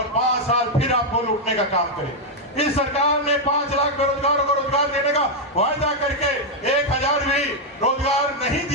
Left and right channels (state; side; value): normal; both; correlation 0.00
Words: 5 साल फिर आपको लूटने का काम करें। इस सरकार ने 5 लाख बेरोजगारों को रोजगार देने का वायदा करके 1,000 भी रोजगार नहीं